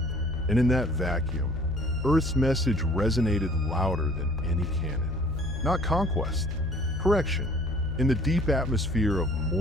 And in that vacuum, Earth's message resonated louder than any cannon. Not conquest, correction. In the deep atmosphere of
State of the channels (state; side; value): normal; both; correlation 0.54